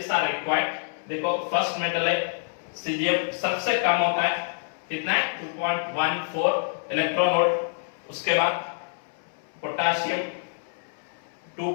are required. देखो फर्स्ट मेटल है सीजियम, सबसे कम होता है, कितना है 2.14 इलेक्ट्रॉन वोल्ट। उसके बाद potassium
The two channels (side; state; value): right; silent; 60 dB below the other